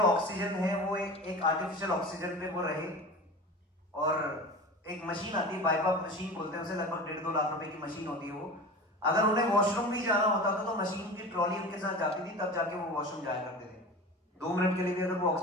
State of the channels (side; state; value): both; normal; correlation 0.33